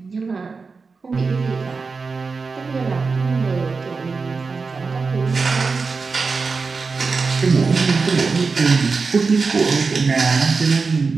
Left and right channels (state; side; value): quieter; left; 4.6 dB